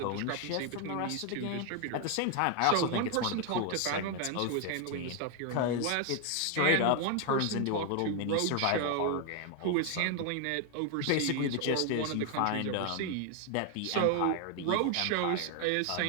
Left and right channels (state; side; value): different; both; correlation 0.01